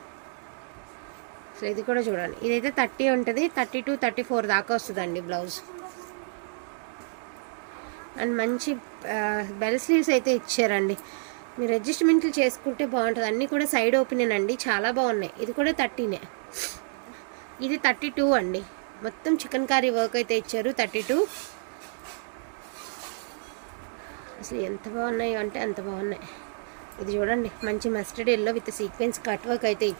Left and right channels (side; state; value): left; silent; digital silence